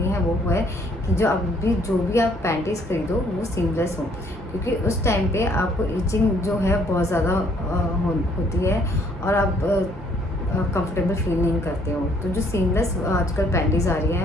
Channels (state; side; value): normal; both; correlation 0.64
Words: है वो है कि जो भी आप पैंटीज़ ख़रीदो वो सीमलेस हो, क्योंकि उस टाइम पे आपको इचिंग जो है बहुत ज़्यादा होती है और आप कंफर्टेबल फील नहीं करते हो। तो जो सीमलेस आजकल पैंटीज़ आ रही